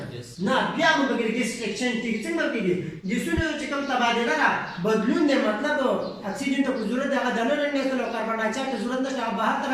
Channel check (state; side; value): identical; both; correlation 1.00